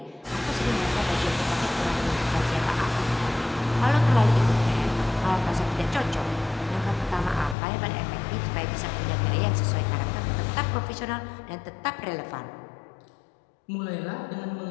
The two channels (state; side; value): drops out; right; at 7.6 s